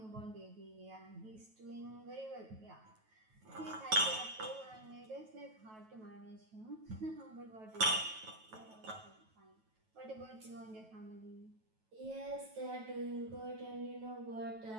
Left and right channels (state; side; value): late; left; 9.2 ms